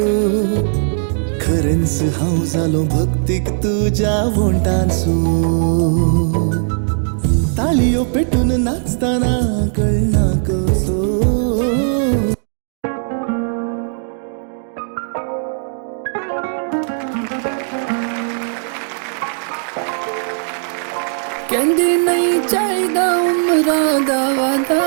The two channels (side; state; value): left; silent; digital silence